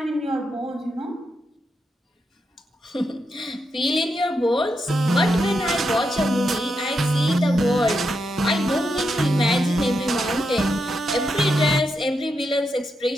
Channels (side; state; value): both; normal; correlation 0.84